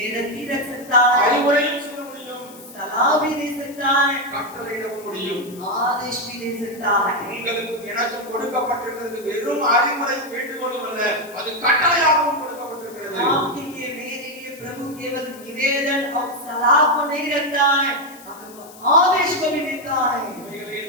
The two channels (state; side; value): noise; left; hiss, 20 dB below the sound